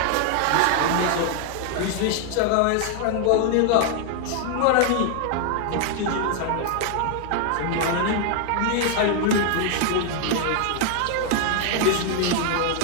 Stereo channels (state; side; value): different; both; correlation 0.00